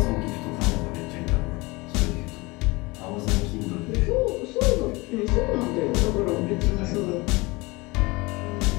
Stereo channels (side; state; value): right; quieter; 23.9 dB